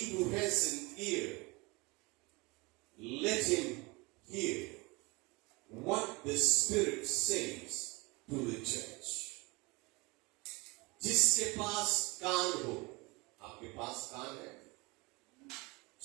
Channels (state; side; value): quieter; left; 25.7 dB